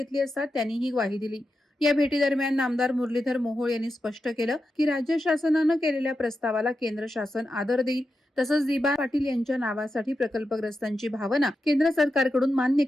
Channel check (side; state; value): both; normal; correlation 0.89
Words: असता त्यांनी ही ग्वाही दिली. या भेटीदरम्यान नामदार मुरलीधर मोहोळ यांनी स्पष्ट केलं की राज्य शासनानं केलेल्या प्रस्तावाला केंद्र शासन आदर देईल. तसंच दिबा पाटील यांच्या नावासाठी प्रकल्पग्रस्तांची भावना केंद्र सरकारकडून मान्य